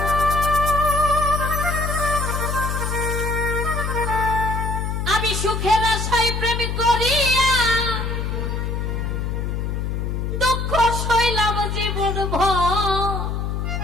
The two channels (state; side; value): noise; left; hum, 2 dB below the sound